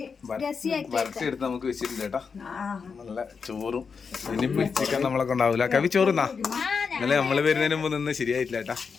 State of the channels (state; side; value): quieter; right; 5.6 dB